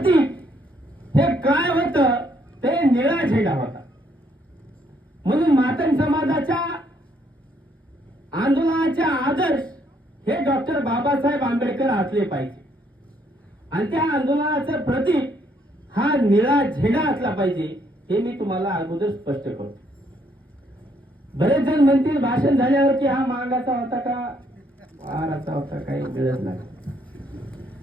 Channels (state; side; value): normal; both; correlation 0.70